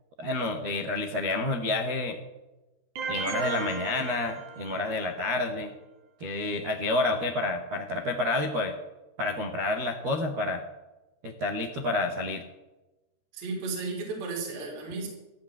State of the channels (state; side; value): late; left; 13 ms